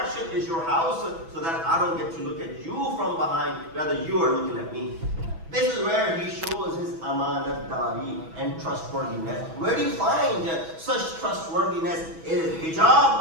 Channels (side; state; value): left; late; 6.1 ms